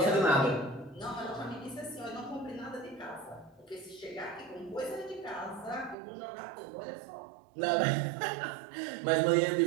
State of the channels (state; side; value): drops out; left; at 6.0 s